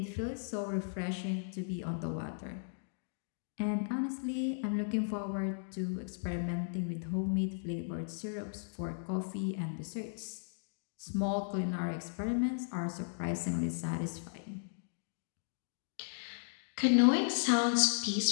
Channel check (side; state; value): right; silent; digital silence